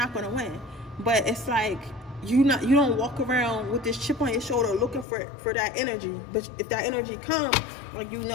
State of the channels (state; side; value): drops out; right; at 5.1 s